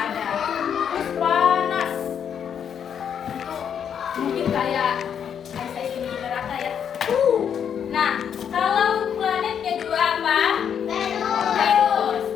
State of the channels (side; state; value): right; quieter; 8.1 dB